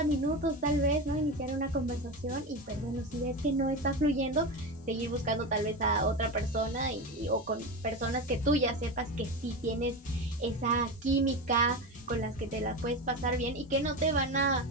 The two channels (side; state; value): both; normal; correlation 0.21